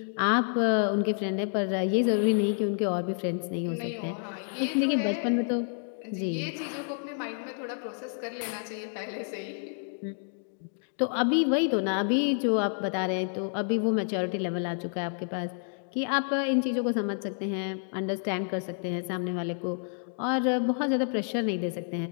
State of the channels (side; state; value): right; silent; 58 dB below the other